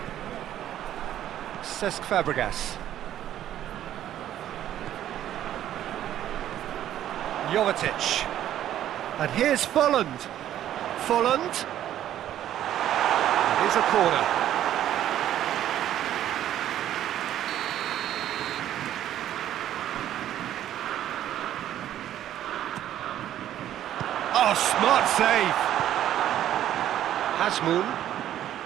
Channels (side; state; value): left; quieter; 11.8 dB